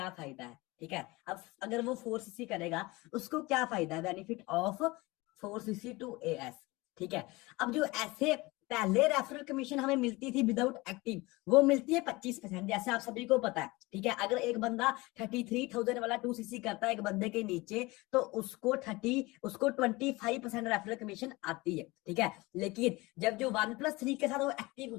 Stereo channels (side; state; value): right; quieter; 22.4 dB